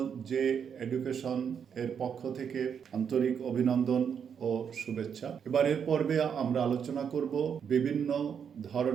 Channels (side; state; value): left; quieter; 7.4 dB